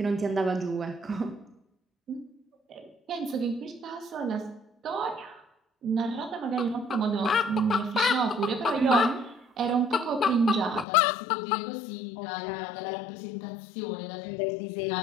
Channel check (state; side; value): drops out; right; at 10.9 s